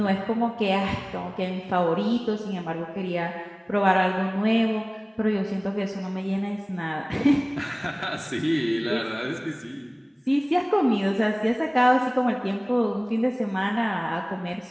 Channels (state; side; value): identical; both; correlation 1.00